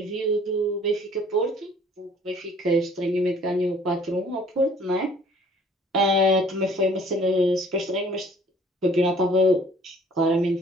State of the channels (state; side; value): normal; both; correlation 0.56